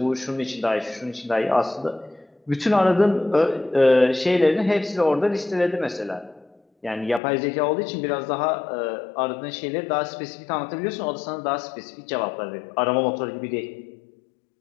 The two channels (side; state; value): right; drops out; at 7.2 s